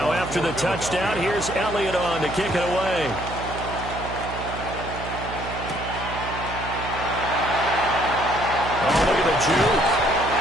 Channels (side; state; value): right; noise; hum, 9 dB below the sound